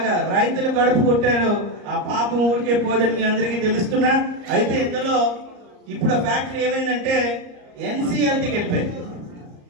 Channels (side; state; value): left; late; 34 ms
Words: రైతులు కడుపు కొట్టారు. ఆ పాపం ఊరికే పోదని మీ అందరికీ తెలుస్తున్నా. అయితే ఇందులో ఇప్పుడు ఆ ఫ్యాక్టరీ ఏమైందంటే ఎన్సీఎల్టీకి వెళ్ళిపోయింది.